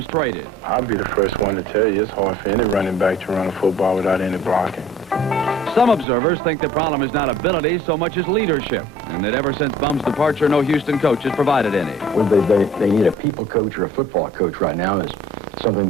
traded. I'll be the first one to tell you it's hard for any running back to run a football without any blocking. Some observers think the problem is not ability so much as leadership, and that ever since Bum's departure, no Houston coach has provided any. Well, they need a people coach or a football coach right now is something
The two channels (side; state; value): both; normal; correlation 0.51